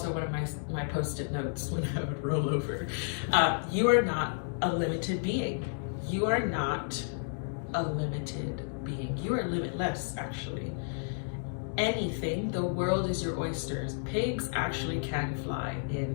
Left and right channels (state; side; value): silent; right; digital silence